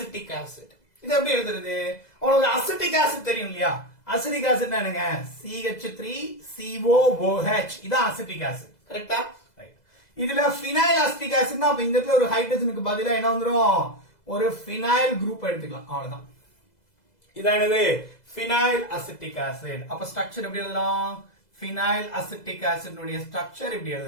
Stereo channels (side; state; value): right; late; 2.0 ms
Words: acid. இது எப்படி எழுதுறது? உங்களுக்கு அசிட்டிக் ஆசிட் தெரியும் இல்லையா? அசிட்டிக் ஆசிட்னா என்னங்க? CH3COOH. இதான் அசிட்டிக் ஆசிட், கரெக்ட்டா? ரைட். இதுல phenyl acetic acidனா அப்ப இந்த இடத்துல ஒரு ஹைட்ரஜனுக்கு பதிலா என்ன வந்துரும்? ஒரு phenyl குரூப் எடுத்துக்கலாம், அவ்வளவுதான். இதான் என்னது? phenyl acetic acid. அப்ப ஸ்ட்ரக்சர் எப்படி எழுதலாம்? phenyl acetic acid உடைய ஸ்ட்ரக்சர் இப்படி